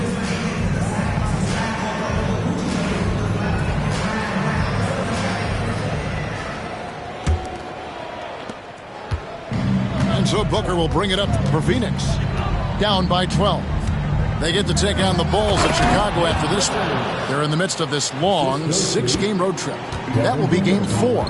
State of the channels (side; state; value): both; identical; correlation 1.00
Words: And so Booker will bring it up for Phoenix. Down by 12. They get to take on the Bulls of Chicago after this one. They're in the midst of this long 6-game road trip. That will be game 4.